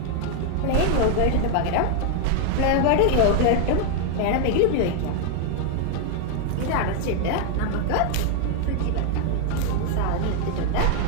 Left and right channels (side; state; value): both; different; correlation 0.00